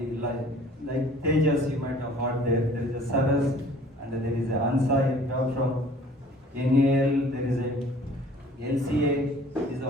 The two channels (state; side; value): normal; both; correlation 0.52